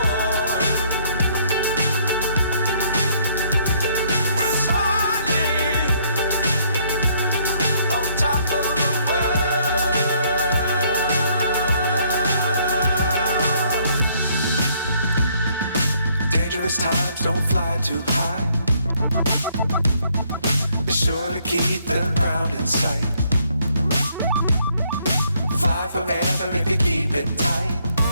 Times don't fly too high. Be sure to keep the ground in sight. Fly forever if you keep it tight.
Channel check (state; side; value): inverted; both; correlation -0.67